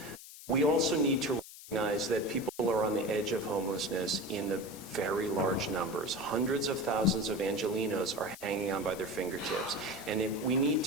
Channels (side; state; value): left; noise; hiss, 16 dB below the sound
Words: We also need to recognize that people are on the edge of homelessness in the very large numbers. Hundreds of thousands of Angelenos are hanging on by their fingertips. And if we need